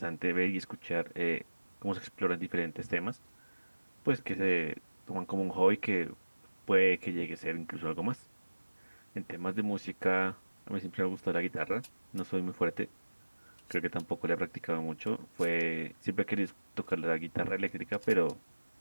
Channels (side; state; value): both; inverted; correlation -1.00